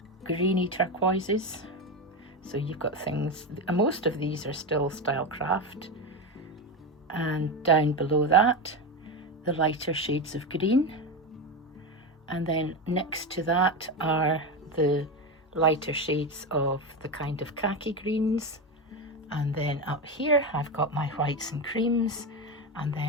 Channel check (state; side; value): normal; both; correlation 0.16